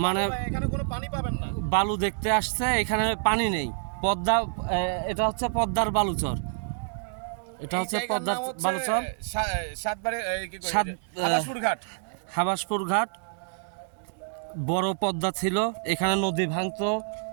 মানে বালু ভাই, এখানে কোনো পানি পাবেন না। বালু দেখতে আসছে, এখানে পানি নেই। পদ্মা এটা হচ্ছে পদ্মার বালুচর। এটা এই হচ্ছে জায়গার পদ্মার নাম হচ্ছে বালুচর। সাতবারে কি কই সাত হাবাসপুর ঘাট। হাবাসপুর ঘাট। বড় পদ্মা ছিল, এখানে নদী ভাঙতো।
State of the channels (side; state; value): left; silent; digital silence